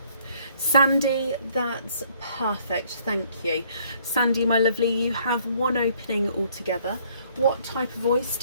Sandy, that's perfect. Thank you. Sandy, my lovely, you have one opening altogether. What type of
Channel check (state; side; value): inverted; both; correlation -0.63